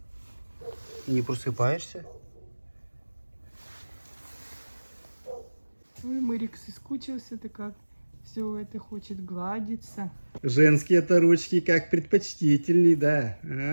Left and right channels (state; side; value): inverted; both; correlation -1.00